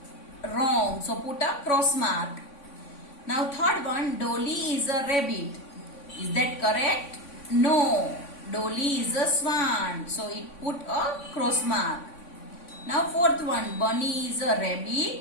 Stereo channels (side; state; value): right; late; 3.5 ms